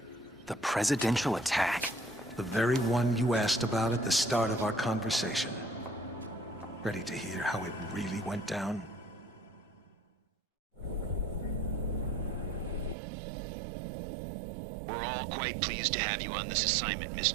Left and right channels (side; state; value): left; drops out; at 13.0 s